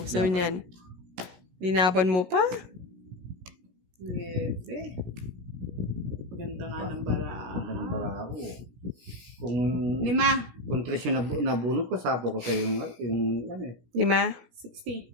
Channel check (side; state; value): left; late; 16 ms